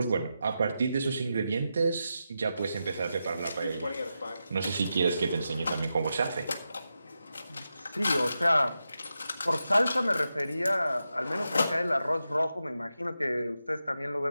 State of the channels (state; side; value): inverted; both; correlation -0.89